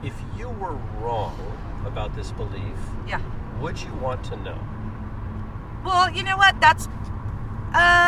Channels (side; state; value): both; identical; correlation 1.00